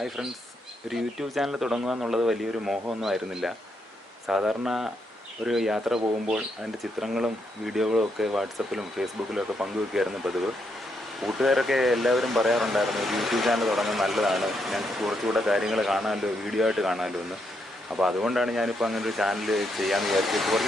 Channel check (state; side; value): normal; both; correlation 0.78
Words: friends, ഒരു YouTube channel തുടങ്ങുക എന്നുള്ളത് വലിയൊരു മോഹമൊന്നും ആയിരുന്നില്ല. സാധാരണ ഒരു യാത്ര പോകുമ്പോൾ അതിൻ്റെ ചിത്രങ്ങളും വീഡിയോകളും ഒക്കെ വാട്സപ്പിലും ഫേസ്ബുക്കിലും ഒക്കെ പങ്കുവെക്കുകയായിരുന്നു പതിവ്. കൂട്ടുകാരൊക്കെ എല്ലാവരും പറയാറുണ്ടായിരുന്നു ഒരു യൂട്യൂബ് ചാനൽ തുടങ്ങുന്നത് നല്ലതാണ്, ഞങ്ങൾക്ക് കുറച്ചുകൂടെ കാര്യങ്ങൾ കാണാമല്ലോ, വീഡിയോ ആയിട്ട് കാണാമല്ലോ എന്ന്. അപ്പോൾ അതുകൊണ്ടാണ് ഞാനിപ്പോൾ അങ്ങനെ ഒരു ചാനൽ ചെയ്യാമെന്ന് വിചാരിച്ചിട്ട്